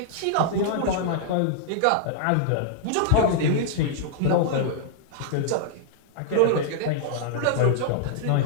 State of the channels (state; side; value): different; both; correlation -0.01